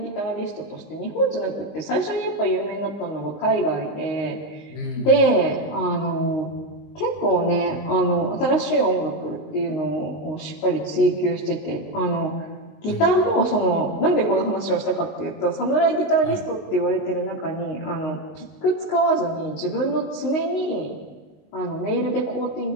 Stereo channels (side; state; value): right; late; 19 ms